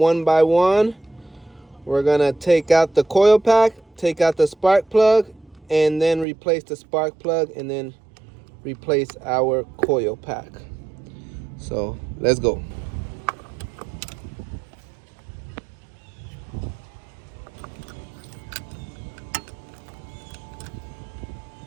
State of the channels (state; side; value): drops out; left; at 6.2 s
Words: by one. We're gonna take out the coil pack, take out the spark plug, and then replace the spark plug, and then replace our coil pack. So let's go.